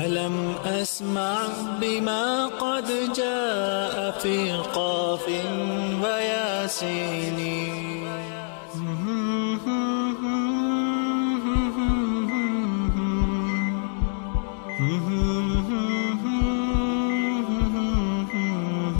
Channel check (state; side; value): silent; right; digital silence